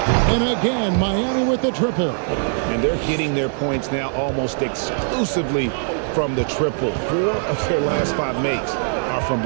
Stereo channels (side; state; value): left; silent; digital silence